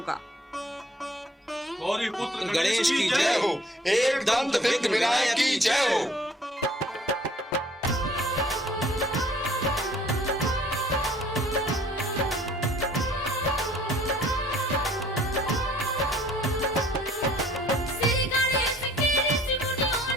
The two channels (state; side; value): normal; both; correlation 0.57